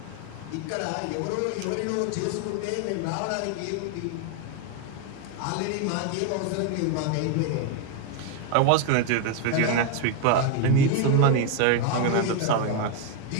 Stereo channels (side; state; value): both; different; correlation 0.01